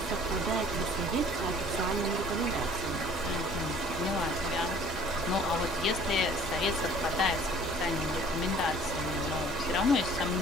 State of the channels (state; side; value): normal; both; correlation 0.52